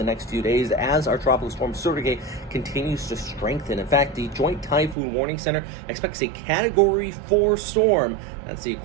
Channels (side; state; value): left; drops out; at 5.0 s